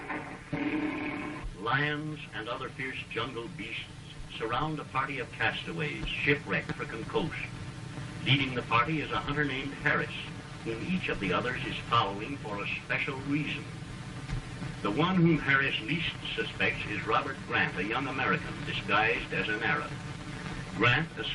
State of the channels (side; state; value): both; identical; correlation 1.00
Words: Lions and other fierce jungle beasts surround a party of castaways shipwrecked for coast. Leading the party is a hunter named Harris, whom each of the others is following for a special reason. The one whom Harris least suspects is Robert Grant, a young American disguised as an Arab. Grant